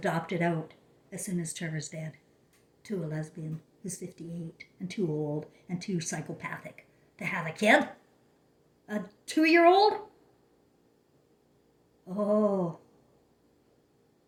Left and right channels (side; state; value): both; identical; correlation 1.00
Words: out, as soon as Trevor's dead, to a lesbian who's 58 and too old and too psychopathic to have a kid. A 2-year-old? Oh.